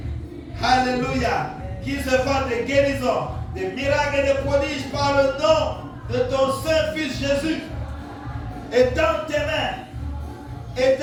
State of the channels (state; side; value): identical; both; correlation 1.00